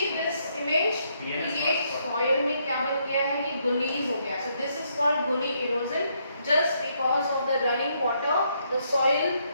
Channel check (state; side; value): inverted; both; correlation -0.74